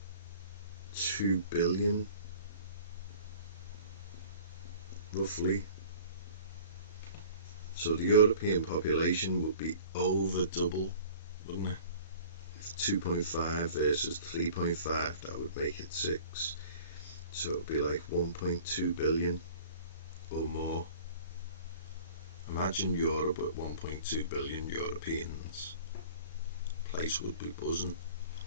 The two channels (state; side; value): inverted; both; correlation -0.46